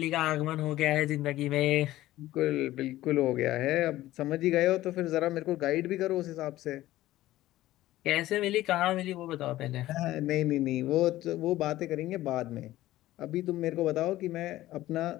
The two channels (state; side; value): quieter; right; 15.6 dB